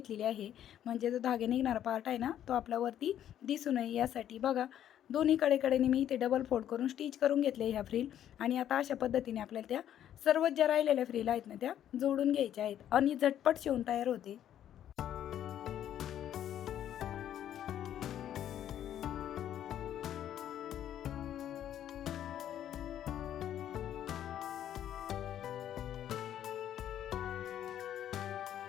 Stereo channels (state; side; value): quieter; right; 10.8 dB